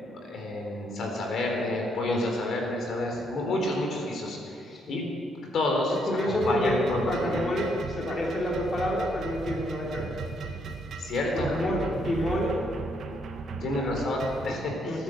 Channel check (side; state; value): both; normal; correlation 0.72